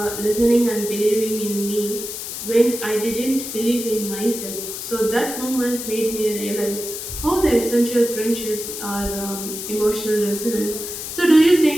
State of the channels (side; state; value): left; noise; hiss, 7 dB below the sound